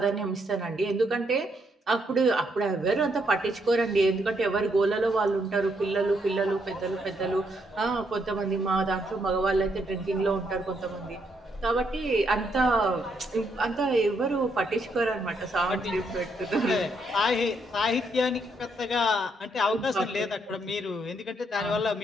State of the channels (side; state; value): both; normal; correlation 0.75